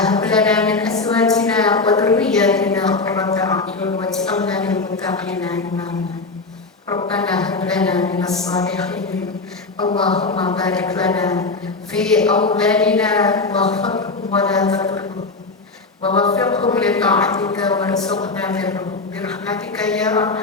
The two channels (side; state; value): right; quieter; 3.8 dB